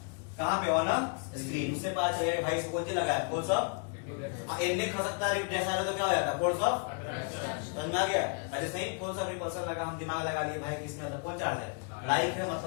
कहां पे, ऑन स्क्रीन। उससे पता चलेगा भाई इसको क्या लगाया, फोर्स ऑफ, इनमें खसकता है जैसा तो क्या हो जाता है, फोर्स ऑफ, समझ में आ गया। अरे नहीं, कौन सा रिपल्सन लगा, हम दिमाग लगा लिए भाई कि इसमें मतलब कौन चार्ज है, लाइक है,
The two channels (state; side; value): quieter; right; 39.2 dB